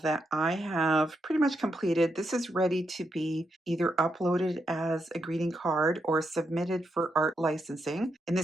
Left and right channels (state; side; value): normal; both; correlation 0.82